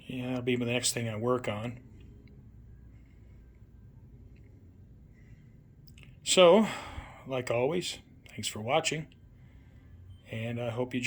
Yeah, that'll be the next thing I work on. So, like always, thanks for watching, and I hope you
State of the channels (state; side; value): identical; both; correlation 1.00